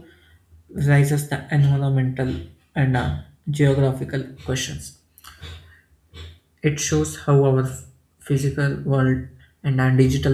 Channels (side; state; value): both; identical; correlation 1.00